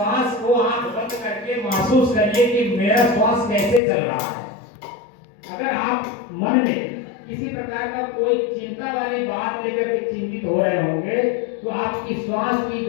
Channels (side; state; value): right; drops out; at 3.8 s